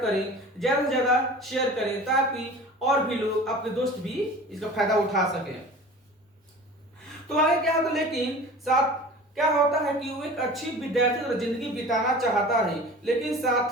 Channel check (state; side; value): normal; both; correlation 0.40